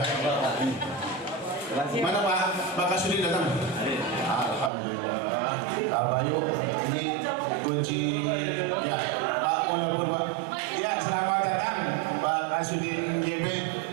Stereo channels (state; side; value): drops out; left; at 4.7 s